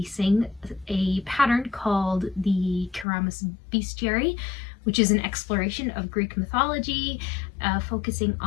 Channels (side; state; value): right; drops out; at 3.1 s